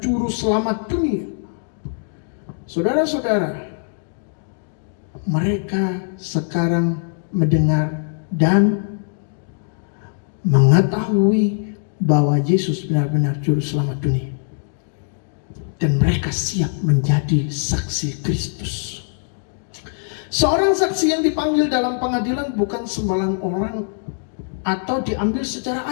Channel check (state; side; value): silent; right; digital silence